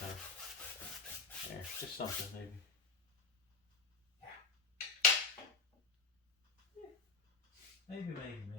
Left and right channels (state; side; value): quieter; right; 4.5 dB